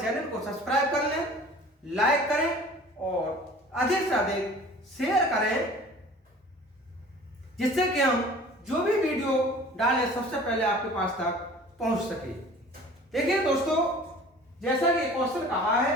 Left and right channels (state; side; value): normal; both; correlation 0.46